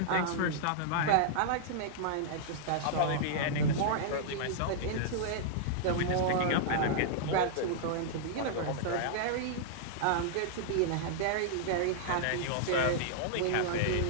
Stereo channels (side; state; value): both; different; correlation -0.02